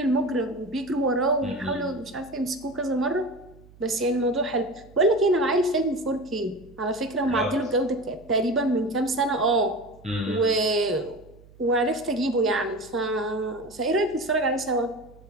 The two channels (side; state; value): right; noise; hum, 24 dB below the sound